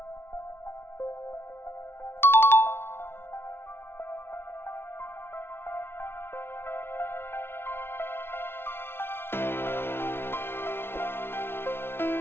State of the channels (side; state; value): right; late; 0.11 ms